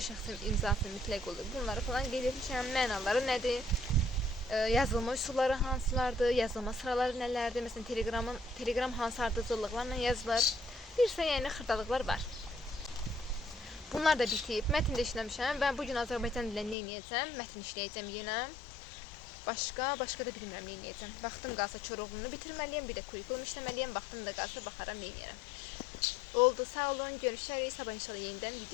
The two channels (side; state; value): right; drops out; at 16.8 s